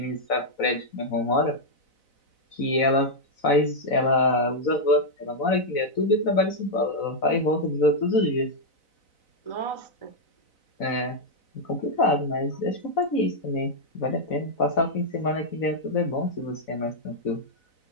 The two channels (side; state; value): right; late; 4.0 ms